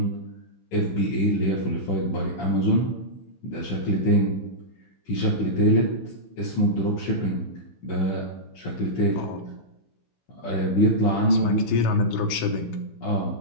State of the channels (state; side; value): late; right; 16 ms